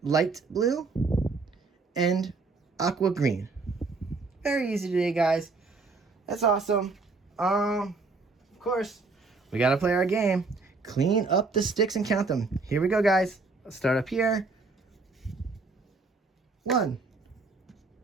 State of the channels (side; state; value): left; quieter; 3.9 dB